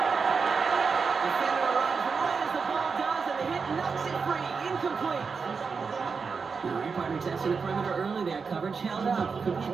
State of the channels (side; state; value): left; quieter; 5.2 dB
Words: Defender arrives right as the ball does, and the hit knocks it free. Incomplete. Partner testing the perimeter early there. Coverage held up. Could be a